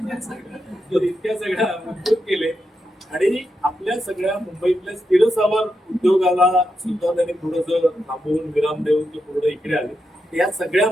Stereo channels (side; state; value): both; normal; correlation 0.85